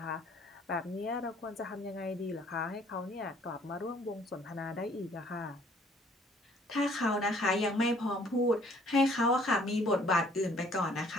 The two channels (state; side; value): normal; both; correlation 0.59